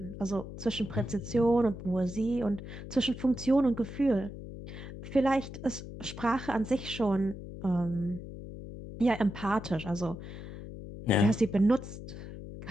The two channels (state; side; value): noise; left; hum, 11 dB below the sound